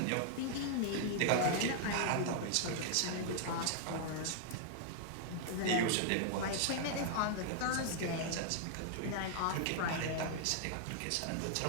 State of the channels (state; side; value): different; both; correlation -0.01